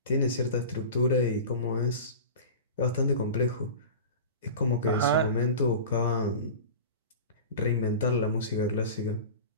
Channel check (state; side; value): inverted; both; correlation -0.33